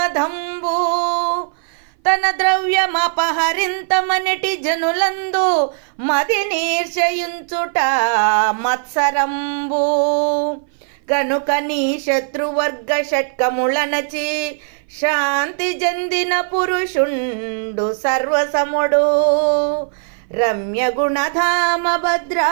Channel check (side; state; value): left; silent; 59 dB below the other